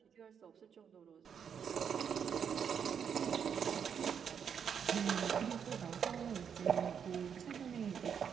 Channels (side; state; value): left; quieter; 7.5 dB